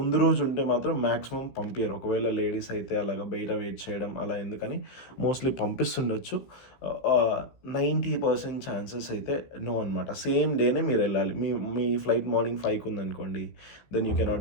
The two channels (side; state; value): right; late; 15 ms